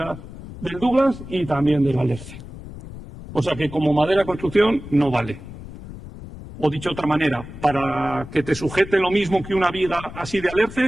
del Douglas y también del alerce. O sea que como madera construcción no vale. O dicho de otra manera, para que te sujete lo mismo que una viga así de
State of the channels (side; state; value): left; noise; rumble, 14 dB below the sound